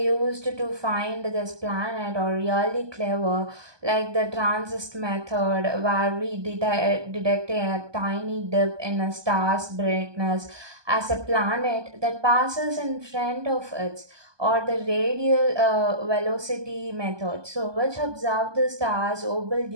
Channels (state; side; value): late; left; 1.2 ms